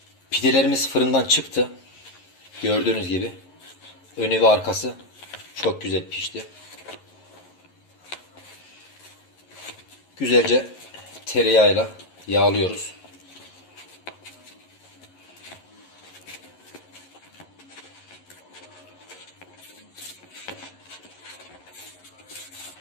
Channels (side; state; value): right; late; 11 ms